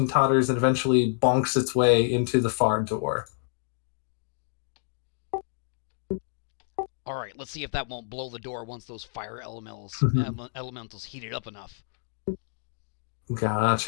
totters and eventually bonks its way into the far door. All right, let's see if that won't blow the door once those fire elementals heat it up enough.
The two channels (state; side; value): silent; right; digital silence